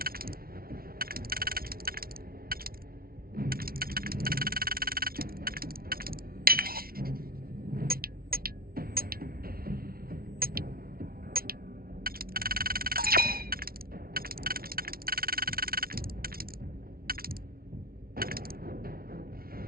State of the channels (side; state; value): left; late; 0.43 ms